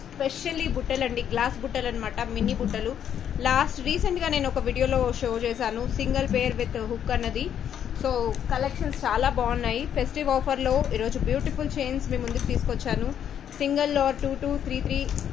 స్పెషల్లీ బుట్టలు అండి, గ్లాస్ బుట్టలు అనమాట, మినీ బుట్టలు. రీసెంట్గా నేను ఒక వీడియోలో షో చేశాను, సింగిల్ పేర్ విత్ హుక్ అన్నది. సో కలెక్షన్స్ చాలా బాగున్నాయి. ఫెస్టివ్ ఆఫర్లో ఈరోజు బ్యూటిఫుల్ చైన్స్ మీ ముందుకు తీసుకొచ్చాను. సింగిల్ ఆర్ 2 2 3 3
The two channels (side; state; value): right; quieter; 9.3 dB